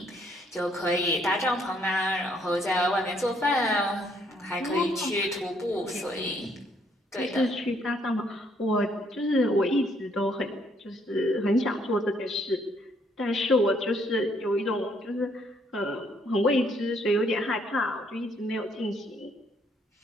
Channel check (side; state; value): both; normal; correlation 0.68